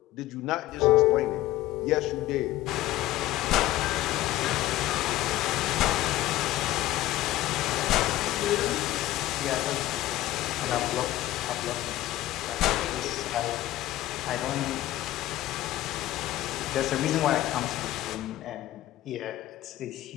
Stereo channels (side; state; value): right; quieter; 15.4 dB